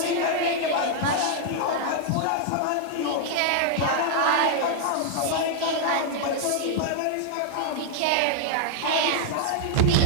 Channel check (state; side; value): different; both; correlation 0.00